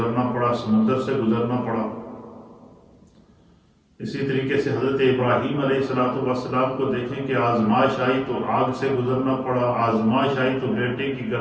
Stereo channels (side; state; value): both; identical; correlation 1.00